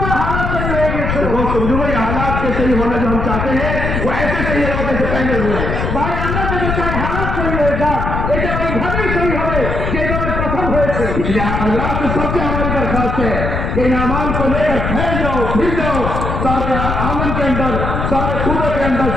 हालात तैयार हो गए। दोस्तों जो ये हालात के सही होना जो हम चाहते हैं वो ऐसे सही है जैसे पहले हुए। भाई আমরা যদি চাই हालात सही हो जाए, এটা ওইভাবেই सही হবে যেভাবে প্রথম হয়েছে। इसलिए अल्लाह से सबसे हमारी दरखास्त है कि इन अमाल को लेकर फैल जाओ, फिर जाओ सारे आमन के अंदर, सारे सूबे के अंदर,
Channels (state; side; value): noise; left; rumble, 2 dB below the sound